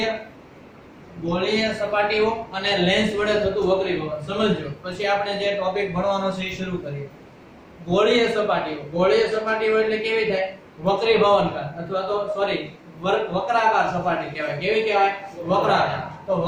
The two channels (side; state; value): both; identical; correlation 1.00